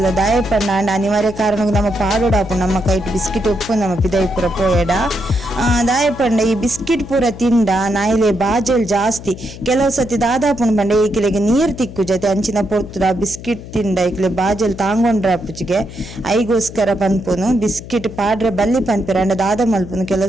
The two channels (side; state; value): left; noise; hum, 14 dB below the sound